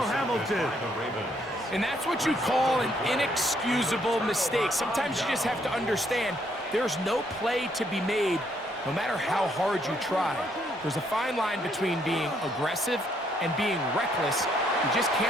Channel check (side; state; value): both; normal; correlation 0.71